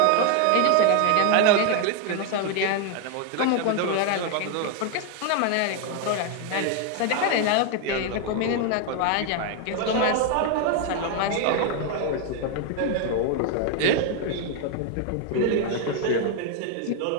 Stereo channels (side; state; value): both; different; correlation 0.01